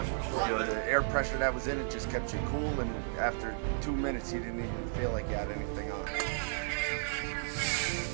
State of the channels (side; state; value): left; silent; digital silence